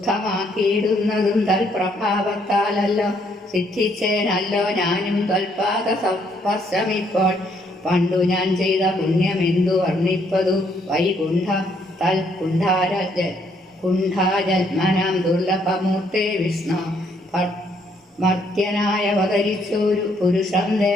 തൽപ്രഭാവത്താലല്ലോ സിദ്ധിച്ചേനല്ലോ ഞാനും ത്വൽപാദ സ്പർശമിപ്പോൾ. പണ്ടു ഞാൻ ചെയ്ത പുണ്യമെന്തു വർണ്ണിപ്പതു വൈകുണ്ഠ തൽ കുണ്ഠാജന്മനാം ദുർലഭമൂർത്തേ വിഷ്ണു. മർത്യനായ അവതരിച്ചൊരു പുരുഷം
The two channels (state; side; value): normal; both; correlation 0.69